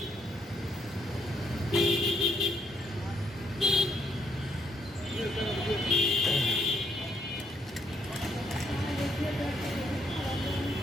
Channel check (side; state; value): both; normal; correlation 0.72